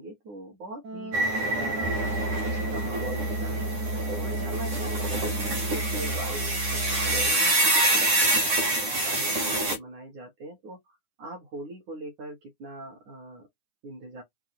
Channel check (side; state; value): left; late; 9.8 ms